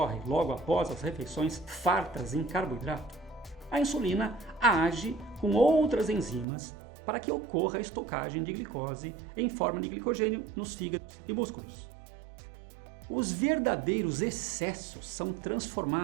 logo após as refeições fartas em carboidrato, a insulina age com outras enzimas para que ocorra a estocagem de glicose em forma de glicogênio nos fígados e músculos. Os verdadeiros excessos são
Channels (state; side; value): drops out; left; at 6.5 s